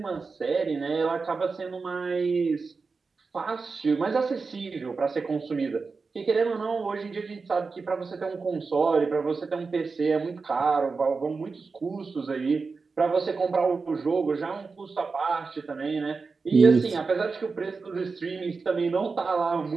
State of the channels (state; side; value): quieter; left; 4.5 dB